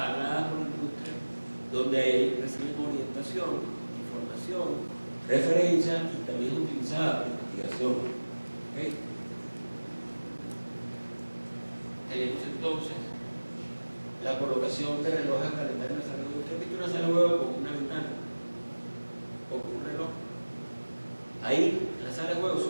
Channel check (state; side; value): inverted; both; correlation -1.00